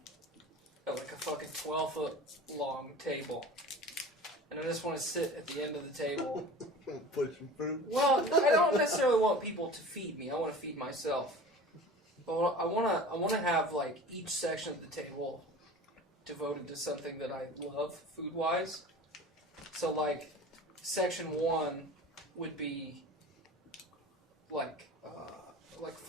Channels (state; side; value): normal; both; correlation 0.38